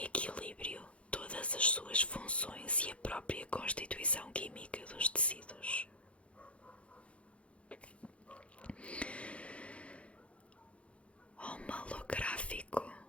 equilíbrio todas as suas funções e a própria constituição química dos tecidos. Homalográfico,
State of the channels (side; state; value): right; late; 0.062 ms